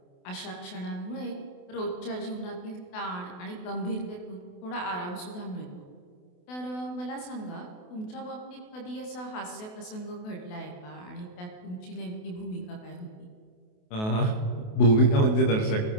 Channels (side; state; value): right; late; 28 ms